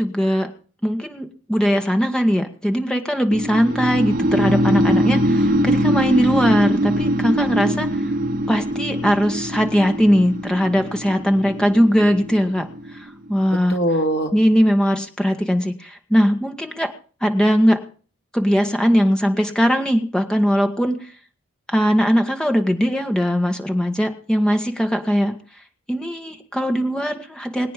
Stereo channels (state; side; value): normal; both; correlation 0.89